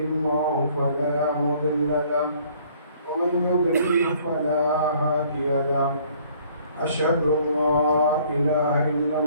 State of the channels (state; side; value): inverted; both; correlation -0.58